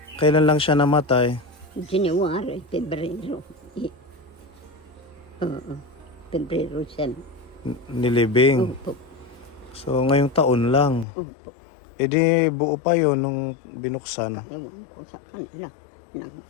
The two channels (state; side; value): drops out; right; at 11.1 s